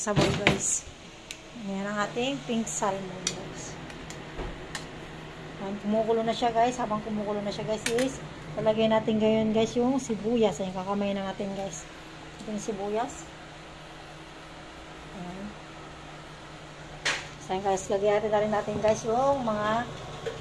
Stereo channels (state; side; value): identical; both; correlation 1.00